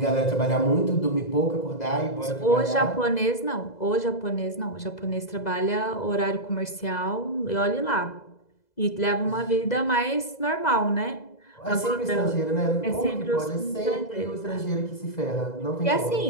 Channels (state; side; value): late; right; 2.0 ms